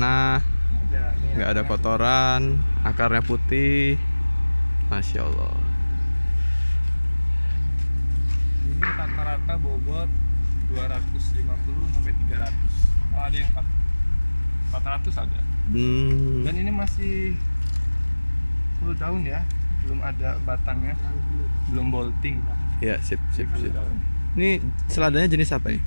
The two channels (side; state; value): both; inverted; correlation -1.00